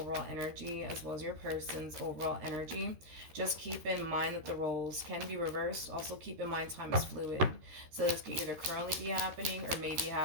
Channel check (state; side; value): late; left; 13 ms